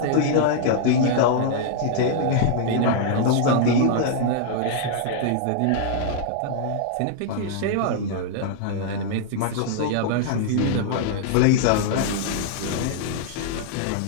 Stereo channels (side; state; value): both; different; correlation -0.01